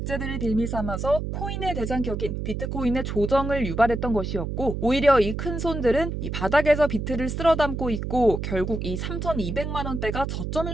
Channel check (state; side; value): noise; right; hum, 4 dB below the sound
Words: 빌미 삼아서 코인의 대장격인 비트코인의 조정을 유발했던 것이었고, 오히려 이 큰 손들은 이 바닥에서 비트를 쓸어 담고 있고 결국 이 3,200만 원대가 저점일